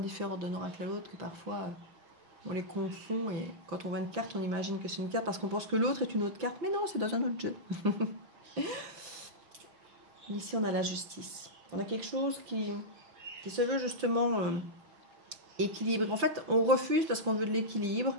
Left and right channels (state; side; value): late; left; 5.9 ms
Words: d'un oracle à l'autre que parfois, on les confond. Et quand on voit une carte, on imagine que c'est une carte parce qu'on pense que l'autre est une autre carte. Mais non, c'est dans un autre jeu. Ici, on a la justice. On a quelque chose qui se veut justement équilibré. En fait, on refuse parce qu'on veut de l'équilibre.